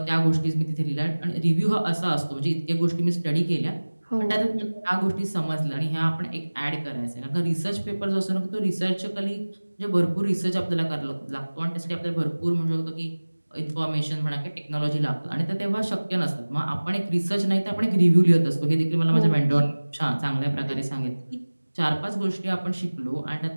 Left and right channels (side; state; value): both; inverted; correlation -1.00